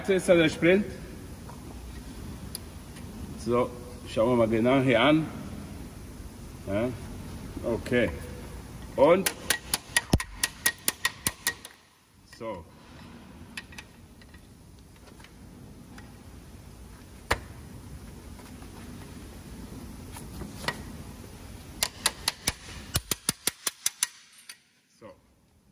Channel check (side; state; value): both; identical; correlation 1.00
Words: ist der Sprint. So, schauen wir mal genau hier an. Ja, okay. Und so. So.